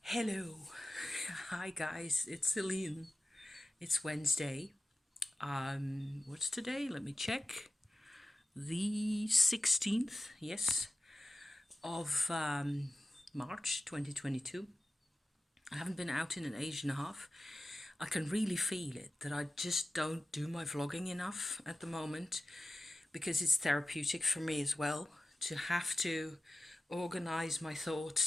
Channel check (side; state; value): both; normal; correlation 0.94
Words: Hello. Hi guys, it's Celine. It's Wednesday. What's today? Let me check. The 16th, yes, of March 2022. I haven't been out in an age and a half. I can really feel it that I just don't do my vlogging enough at the moment because it's therapeutic for me as well to have to organize my